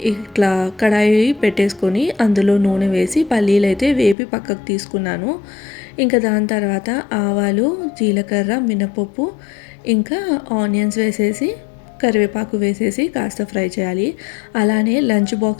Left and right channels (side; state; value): right; drops out; at 4.2 s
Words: ఇట్లా కడాయి పెట్టేసుకొని అందులో నూనె వేసి పల్లీలు అయితే వేపి పక్కకు తీసుకున్నాను. ఇంకా దాని తర్వాత ఆవాలు, జీలకర్ర, మినపప్పు, ఇంకా ఆనియన్స్ వేసేసి కరివేపాకు వేసేసి కాస్త ఫ్రై చేయాలి. అలానే లంచ్